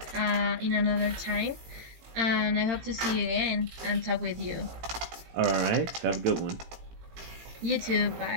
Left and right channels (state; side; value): late; left; 18 ms